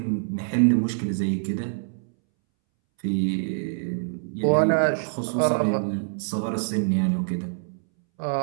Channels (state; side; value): silent; left; 62 dB below the other